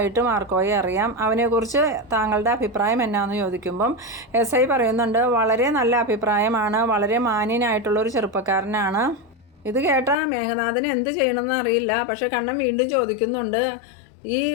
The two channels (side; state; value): right; drops out; at 10.2 s